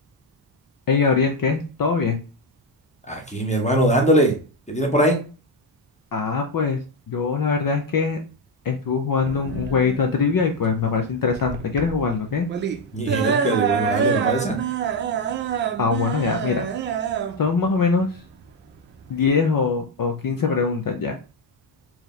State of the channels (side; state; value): both; normal; correlation 0.08